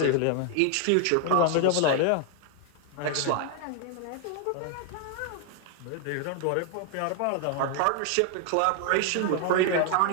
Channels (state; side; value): different; both; correlation 0.00